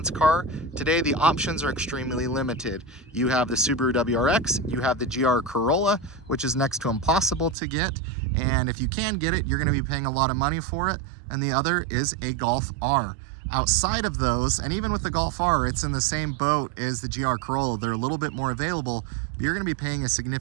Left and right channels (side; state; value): left; drops out; at 7.6 s